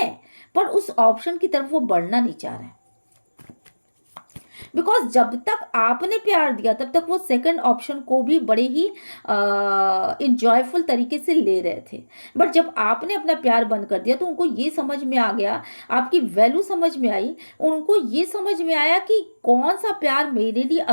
पर उस ऑप्शन की तरफ वो बढ़ना नहीं चाह रहे हैं, बिकॉज जब तक आपने प्यार दिया तब तक वो सेकंड ऑप्शन को भी बड़े ही इंजॉयफुल तरीके से ले रहे थे। बट जब आपने अपना प्यार बंद कर दिया तो उनको ये समझ में आ गया, आपकी वैल्यू समझ में आई, उनको ये समझ में आया कि कौन सा प्यार मेरे लिए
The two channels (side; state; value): both; inverted; correlation -1.00